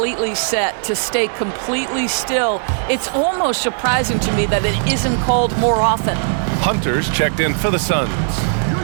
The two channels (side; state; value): left; silent; digital silence